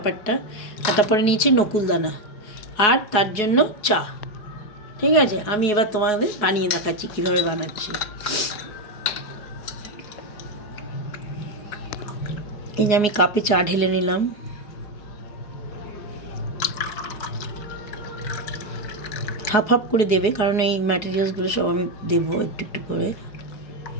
আর তারপরে নিয়েছি নকুলদানা, আর তার জন্য চা। ঠিক আছে, আমি এবার তোমাদের বানিয়ে দেখাচ্ছি কীভাবে বানাচ্ছি। এই যে আমি কাপে চা ঢেলে নিলাম। হাফ হাফ করে দেবে, কারণ এই ম্যাটেরিয়ালসগুলো সব আমি দেবো একটু একটু করে।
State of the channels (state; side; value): late; right; 4.8 ms